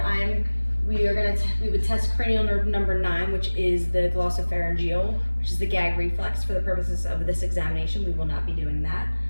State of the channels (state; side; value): inverted; both; correlation -1.00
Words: we would test cranial nerve number 9, which is the glossopharyngeal, which is the gag reflex. For the purposes of this examination, we will not be doing that.